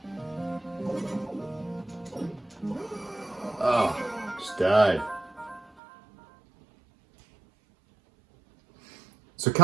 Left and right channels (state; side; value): drops out; left; at 5.8 s